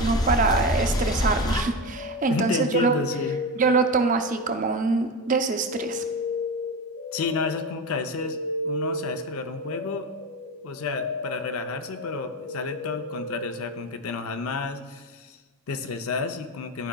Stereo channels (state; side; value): normal; both; correlation 0.21